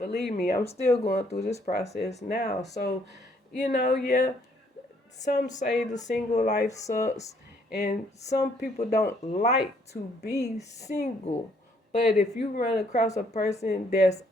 me, I'm still going through this process now. So, yeah, some say the single life sucks, and some people don't like to be single. But if you run across a person that's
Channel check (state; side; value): normal; both; correlation 0.67